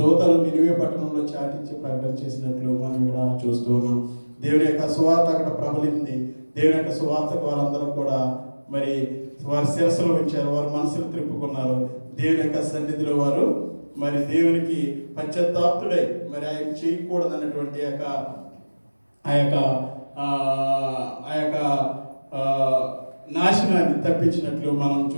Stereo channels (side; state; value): both; inverted; correlation -1.00